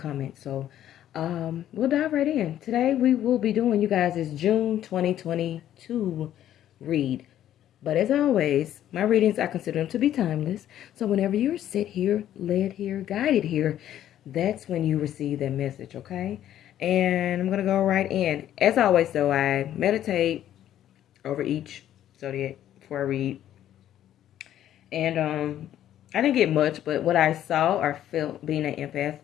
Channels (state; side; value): quieter; right; 11.6 dB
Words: So we'll dive right in. Today we will be doing, you guys, is June 2022 read. But as always, my readings, I consider them to be timeless. So whenever you're set here, led here, guided here, that's when you receive that message, okay? And I'm going to go right in. As always, though, I meditate over each zodiac before I read. And I didn't get much, but what I saw or felt being an empath,